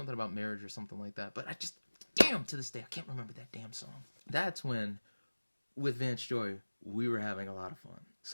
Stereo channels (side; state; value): both; inverted; correlation -1.00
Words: about marriage or something like that. But I just, damn, to this day, I can't remember that damn song. That's when, with Vance Joy, we were having a lot of fun.